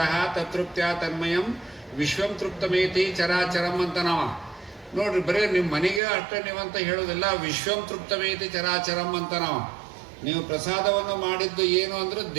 ತತೃಪ್ತ್ಯ ತನ್ಮಯಂ ವಿಶ್ವಂ ತೃಪ್ತಮೇತಿ ಚರಾಚರಂ ಅಂತ ನಾವ ನೋಡ್ರಿ. ಬರೀ ನಿಮ್ಮ ಮನೆಗೆ ಅಷ್ಟೇ ನೀವಂತ ಹೇಳೋದಿಲ್ಲ, ವಿಶ್ವಂ ತೃಪ್ತಮೇತಿ ಚರಾಚರಂ ಅಂತ ನಾವು. ನೀವು ಪ್ರಸಾದವನ್ನು ಮಾಡಿದ್ದು ಏನು ಅಂದ್ರೆ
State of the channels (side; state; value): left; drops out; at 6.0 s